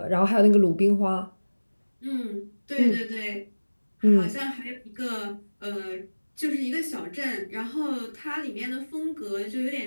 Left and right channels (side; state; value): both; inverted; correlation -1.00